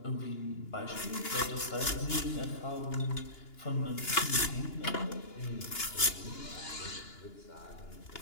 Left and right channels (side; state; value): right; late; 2.9 ms